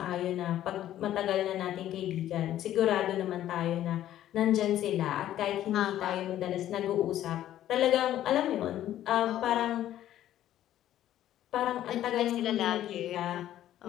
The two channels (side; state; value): right; quieter; 12.5 dB